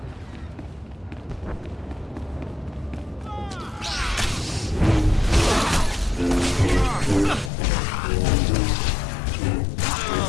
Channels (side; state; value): right; drops out; at 7.5 s